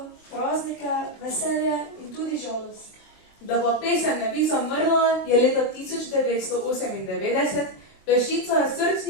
praznike, veselje in tudi žalost. Da pa pesem ne bi zamrla, je leta 1998 peščica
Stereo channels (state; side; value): late; right; 23 ms